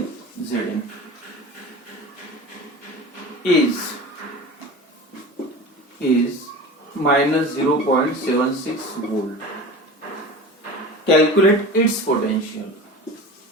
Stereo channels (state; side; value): normal; both; correlation 0.34